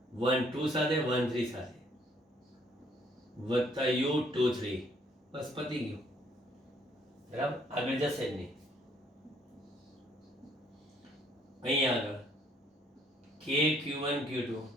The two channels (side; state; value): both; normal; correlation 0.65